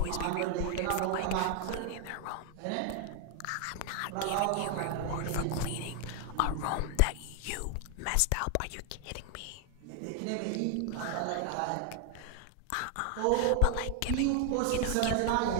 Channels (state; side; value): different; both; correlation 0.00